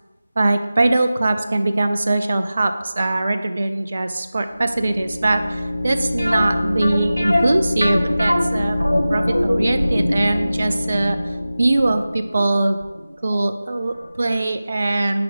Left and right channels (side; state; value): both; inverted; correlation -0.96